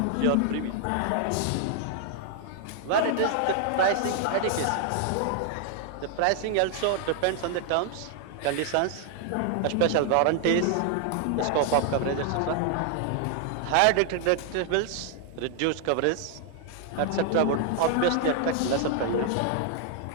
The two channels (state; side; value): different; both; correlation 0.00